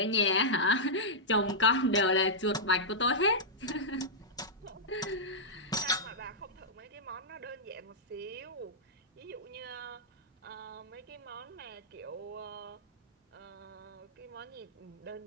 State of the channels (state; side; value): normal; both; correlation -0.10